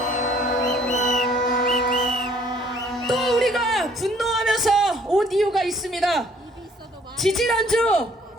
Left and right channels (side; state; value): both; normal; correlation 0.60